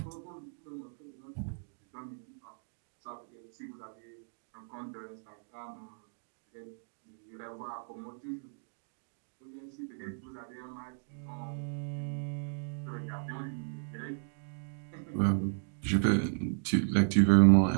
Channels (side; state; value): left; silent; digital silence